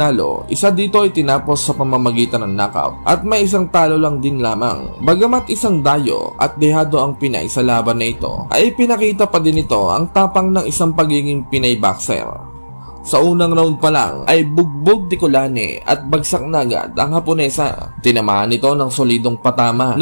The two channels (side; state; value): both; inverted; correlation -1.00